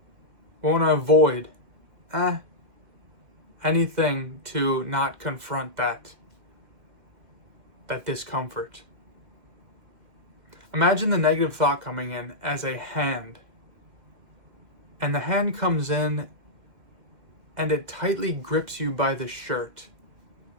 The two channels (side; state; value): left; late; 2.1 ms